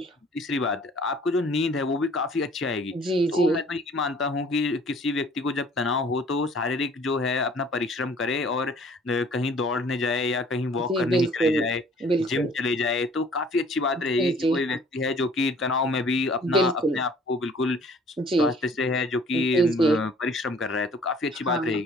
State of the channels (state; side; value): normal; both; correlation 0.54